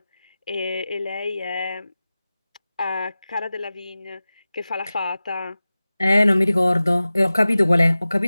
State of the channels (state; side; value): inverted; both; correlation -0.96